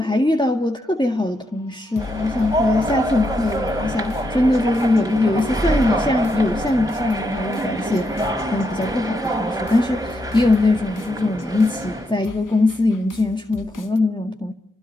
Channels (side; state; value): both; normal; correlation 0.81